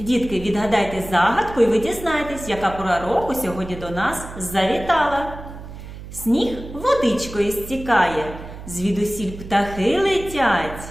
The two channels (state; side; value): noise; right; hum, 13 dB below the sound